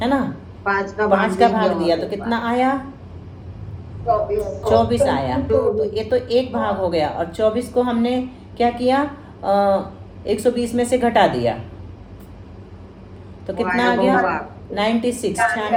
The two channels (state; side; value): identical; both; correlation 1.00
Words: है ना। 5 का भाग दिया तो कितना आया? 24 आया। तो ये तो एक भाग हो गया और 24 को हमने क्या किया? 120 में से घटा दिया तो कितना आ गया? 96,